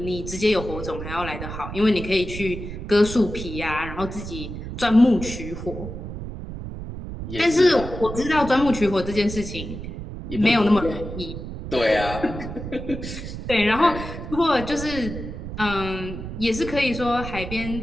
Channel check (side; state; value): right; noise; rumble, 8 dB below the sound